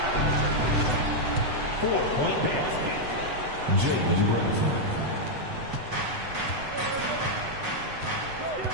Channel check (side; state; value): left; late; 8.0 ms